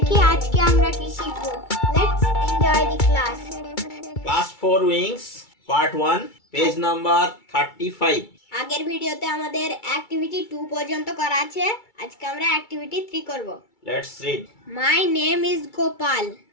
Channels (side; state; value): right; late; 2.3 ms